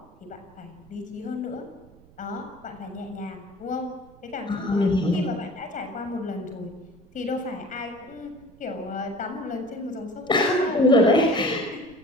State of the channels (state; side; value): noise; right; rumble, 25 dB below the sound